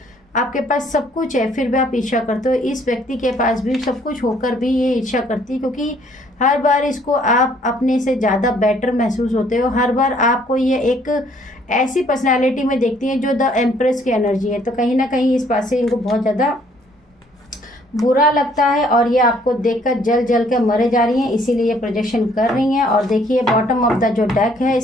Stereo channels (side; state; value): both; normal; correlation 0.63